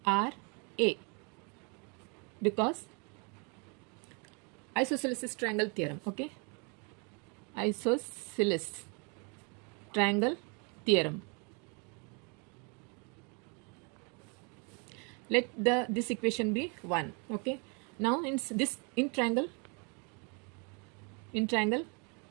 because isosceles triangle theorem. Okay, isosceles triangle theorem. Let this equation be 1. Okay. Now in triangle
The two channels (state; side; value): quieter; left; 34.2 dB